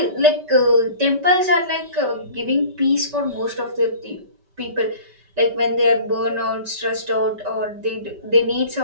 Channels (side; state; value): left; late; 5.2 ms